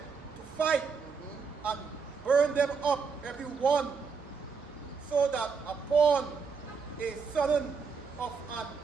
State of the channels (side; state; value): left; quieter; 5.4 dB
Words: fight, and burned them up every one, so that upon a sudden of an